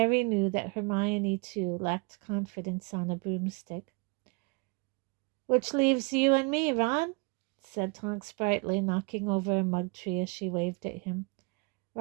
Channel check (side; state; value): left; quieter; 30.3 dB